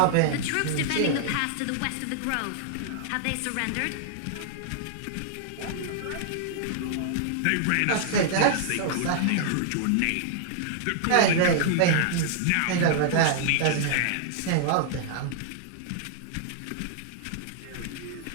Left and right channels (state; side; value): different; both; correlation -0.01